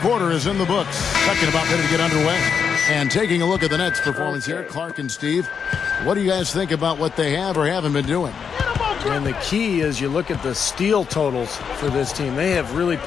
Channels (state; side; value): quieter; right; 6.7 dB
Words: is in the books. Second about ready to get underway. And taking a look at the Nets' performance here, Clark and Steve, what do you guys think about what they have or haven't been doing? And the key is you look at the steal totals for this team. They have really